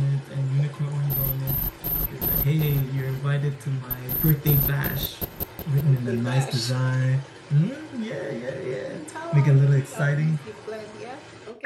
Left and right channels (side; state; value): both; identical; correlation 1.00